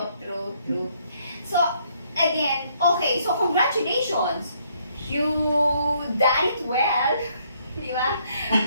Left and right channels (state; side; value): inverted; both; correlation -0.69